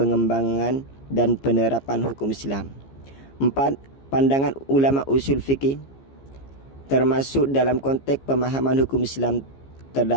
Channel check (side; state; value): right; late; 15 ms